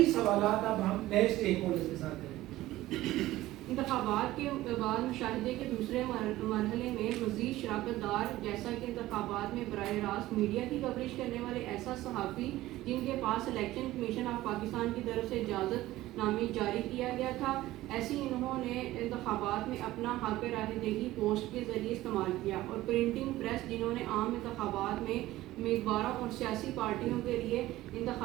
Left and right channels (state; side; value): quieter; left; 16.3 dB